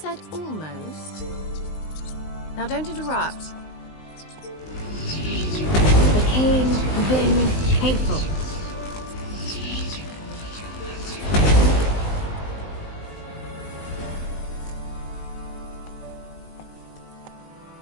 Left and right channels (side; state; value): right; late; 19 ms